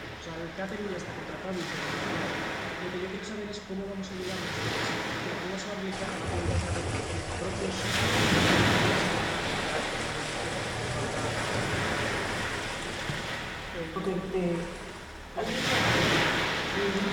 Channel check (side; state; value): both; identical; correlation 1.00